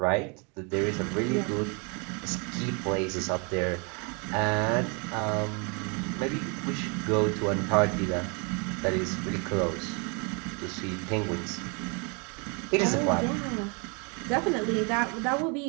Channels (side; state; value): left; quieter; 33.7 dB